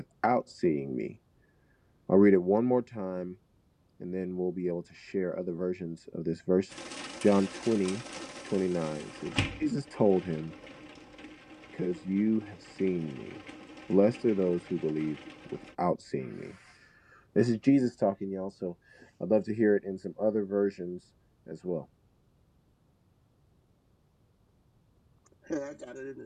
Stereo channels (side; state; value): both; identical; correlation 1.00